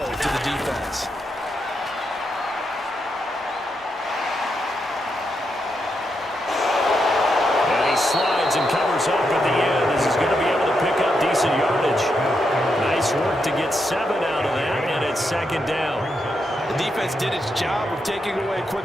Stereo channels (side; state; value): both; normal; correlation 0.83